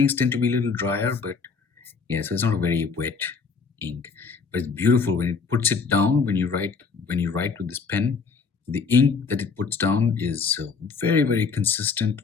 tend to be a little drier, but yeah, so it's not a very wet ink. But it's beautiful when it puts it down. When you write with this pen, the ink that it puts down is very, very consistent.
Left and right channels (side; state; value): right; quieter; 5.2 dB